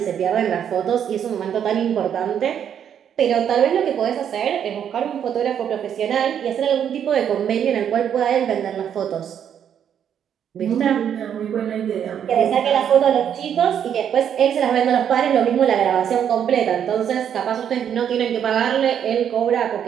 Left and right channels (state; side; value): quieter; left; 8.9 dB